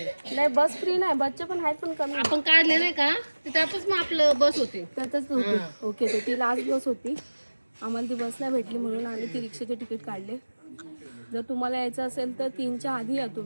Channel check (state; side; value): inverted; both; correlation -1.00